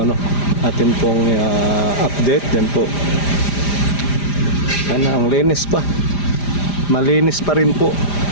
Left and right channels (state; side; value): late; right; 5.0 ms